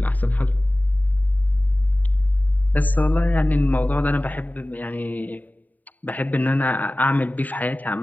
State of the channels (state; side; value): late; right; 0.082 ms